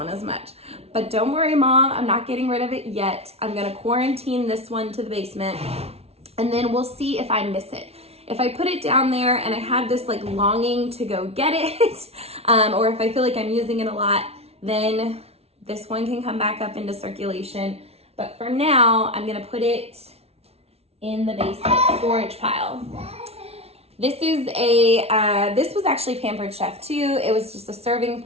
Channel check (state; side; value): late; left; 0.30 ms